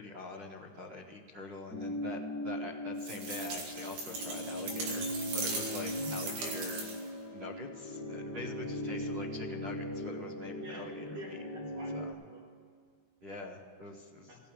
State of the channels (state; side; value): late; left; 13 ms